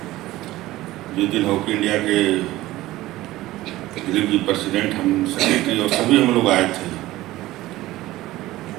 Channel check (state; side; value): quieter; left; 16.9 dB